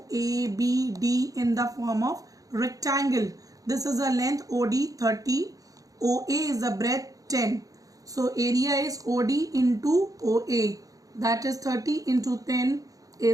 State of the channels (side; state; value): left; late; 0.17 ms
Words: A, B, D in the form of rectangle. This is a length OD 30. OA is the breadth 10. So area is OD into OA. That is 30 into 10